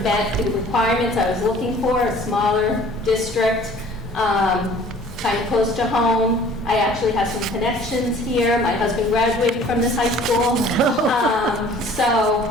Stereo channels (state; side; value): normal; both; correlation 0.51